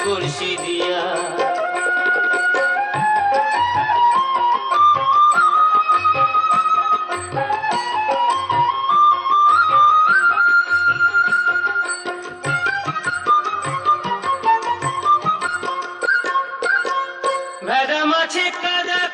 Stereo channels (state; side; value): identical; both; correlation 1.00